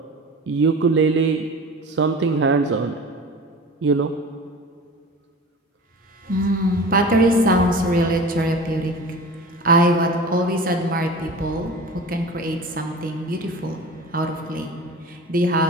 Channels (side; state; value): both; normal; correlation 0.37